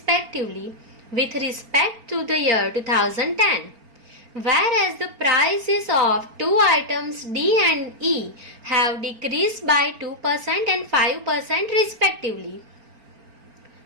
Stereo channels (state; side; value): late; left; 4.3 ms